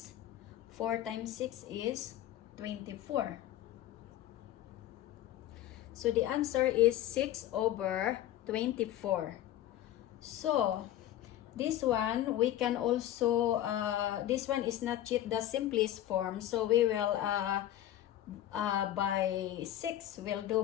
4 times 6 is 24. So the answer is 6/24. So this one we can also, this one is not yet the simplest form. So we will by 6, we'll do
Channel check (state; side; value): quieter; right; 12.7 dB